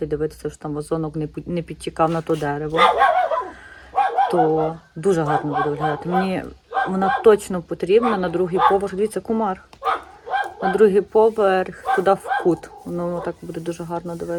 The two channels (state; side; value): identical; both; correlation 1.00